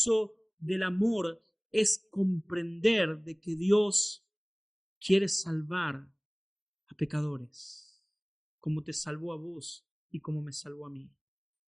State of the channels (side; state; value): both; identical; correlation 1.00